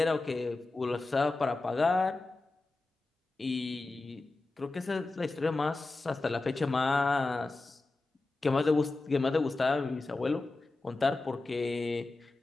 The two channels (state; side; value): quieter; right; 3.3 dB